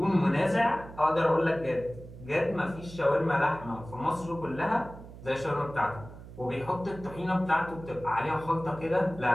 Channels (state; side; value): noise; right; hum, 15 dB below the sound